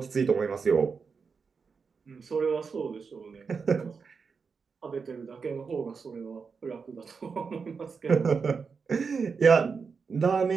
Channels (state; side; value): quieter; left; 5.4 dB